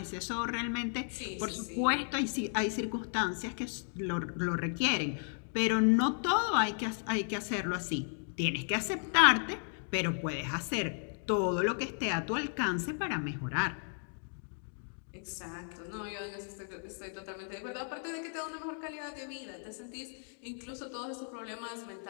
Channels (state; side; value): silent; right; 55 dB below the other